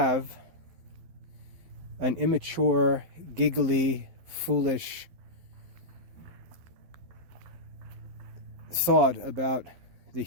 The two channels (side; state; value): left; late; 12 ms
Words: an immature, giggly, foolish thought about the